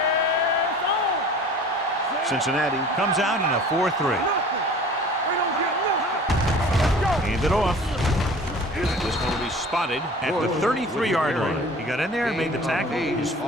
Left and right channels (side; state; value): both; normal; correlation 0.44